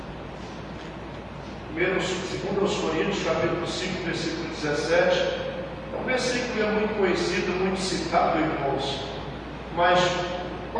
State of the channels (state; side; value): identical; both; correlation 1.00